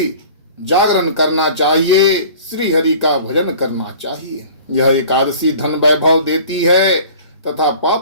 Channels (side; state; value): both; inverted; correlation -0.45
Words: जागरण करना चाहिए। श्री हरि का भजन करना चाहिए। यह एकादशी धन वैभव देती है तथा